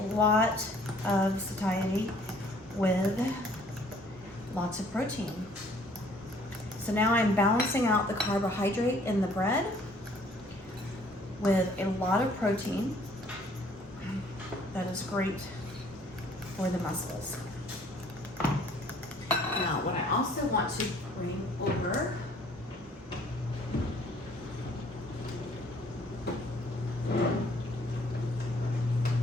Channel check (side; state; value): both; normal; correlation 0.59